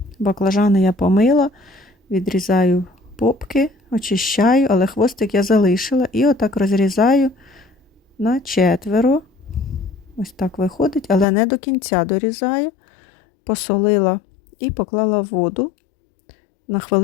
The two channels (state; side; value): drops out; right; at 11.2 s